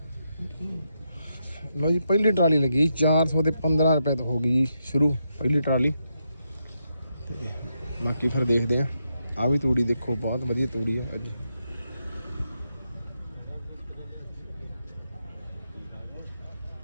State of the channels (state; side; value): inverted; both; correlation -0.83